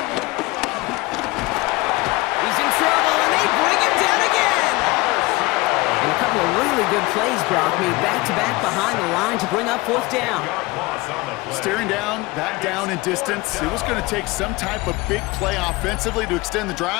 He's in trouble, and they bring him down again. And a couple of really good plays, Brock, made back-to-back behind the line to bring up fourth down. Staring down, that down in distance, it was going to take some type of big play offensively to extend the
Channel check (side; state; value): right; quieter; 22.0 dB